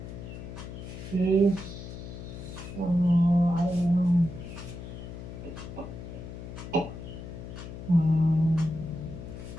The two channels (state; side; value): noise; left; hum, 10 dB below the sound